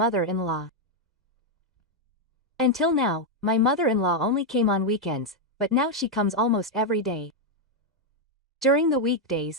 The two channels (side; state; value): both; normal; correlation 0.01